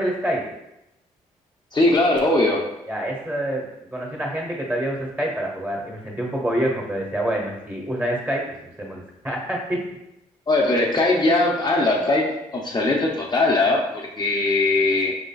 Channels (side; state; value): both; normal; correlation 0.59